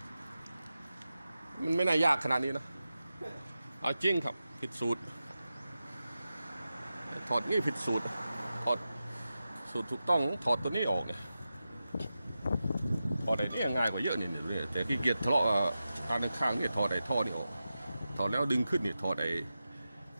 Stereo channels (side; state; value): both; inverted; correlation -0.92